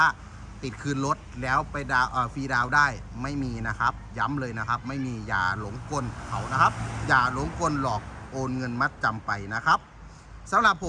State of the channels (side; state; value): both; identical; correlation 1.00